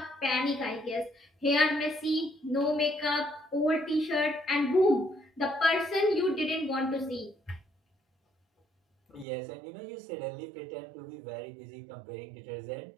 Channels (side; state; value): left; drops out; at 9.2 s